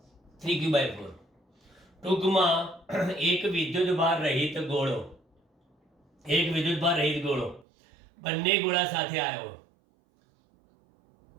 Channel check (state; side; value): drops out; left; at 7.7 s